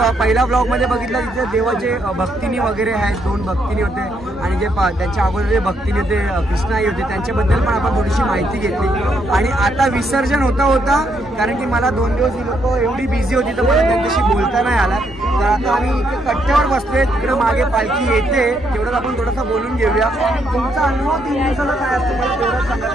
पहिल्या ब्लॉगमध्ये बघितला तिथे देवाचे भक्तिनी वगैरे आहेत, 2 भक्तिनी होते आणि जे त्यांच्या अगोदर जे भक्तिनी होते कृष्णाई होते त्यांच्याबद्दल पण आपण थोडीशी माहिती घेतली। आणि आता विसर्जन होता कारण की मला 2 दिवस ही लोक एवढी बिझी होती तर मला त्यांच्याशी बोलता नाही आला, तर आता आम्ही इथे कट्ट्यावर बसलोय, तिकडे मागे पालखी येते, तेवढंच आपण थोडंसं बोलून घेऊया। तुमचा अनुभव 3 दिवसाला काय असतं मला तेवढंच सांगा,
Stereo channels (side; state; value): both; normal; correlation 0.75